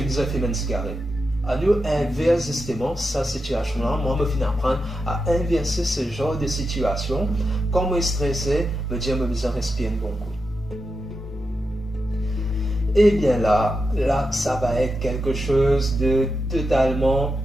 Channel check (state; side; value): normal; both; correlation 0.88